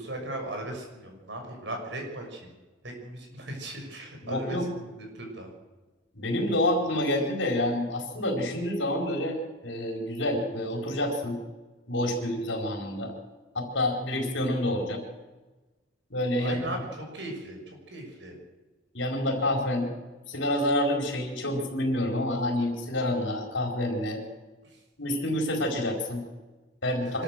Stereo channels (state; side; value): normal; both; correlation 0.20